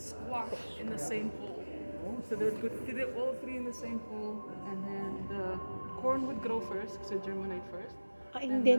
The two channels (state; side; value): inverted; both; correlation -1.00